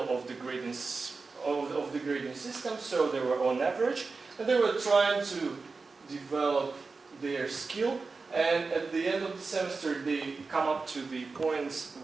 of the grading system, so they were on average, and they were trying to develop their skill. And at the end of the semester, they come up to the points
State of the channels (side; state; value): left; quieter; 4.2 dB